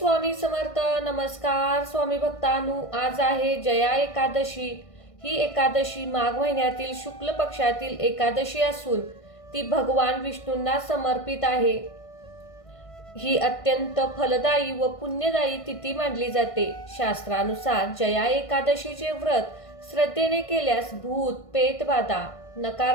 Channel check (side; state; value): right; late; 1.5 ms